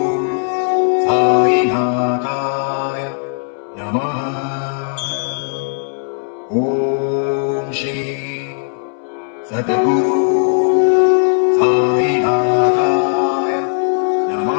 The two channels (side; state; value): right; silent; 63 dB below the other